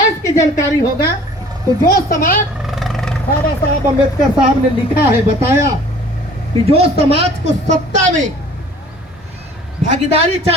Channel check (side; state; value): both; normal; correlation 0.50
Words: की जानकारी होगा तो जो समाज बाबा साहब अम्बेडकर साहब ने लिखा है, बताया कि जो समाज को सत्ता में भागीदारी